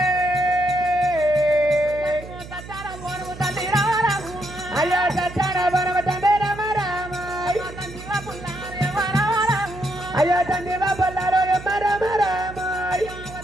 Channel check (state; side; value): noise; right; hum, 14 dB below the sound